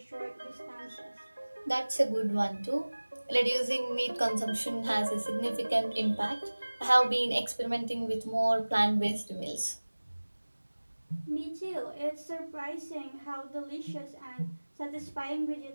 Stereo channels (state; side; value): inverted; both; correlation -1.00